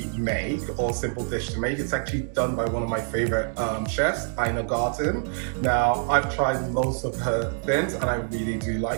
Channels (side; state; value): left; silent; 61 dB below the other